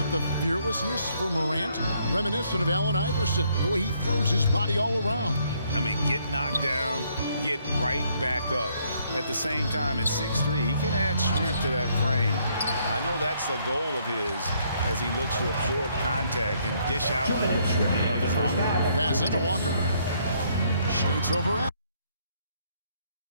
the fearlessness for Morant, reminiscent of Allen Iverson, the way he throws his body all around. I mean, get knocked down, get right back up. At the same time, at 6'3", he can add strength to that frame. I know that's the goal of his as he looks to absorb contact and dish out a little of his own. Pass it to Walker. Shoots over at.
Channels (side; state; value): both; inverted; correlation -0.69